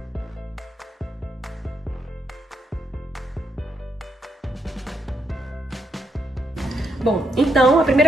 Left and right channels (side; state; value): both; normal; correlation 0.80